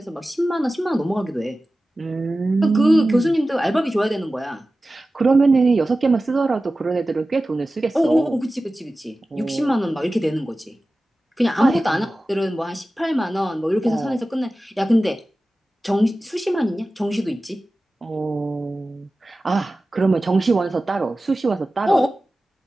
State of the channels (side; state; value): both; normal; correlation 0.95